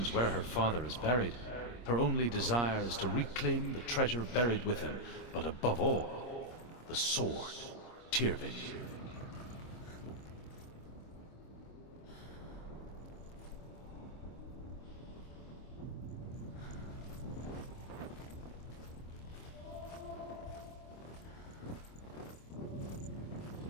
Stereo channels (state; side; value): late; right; 25 ms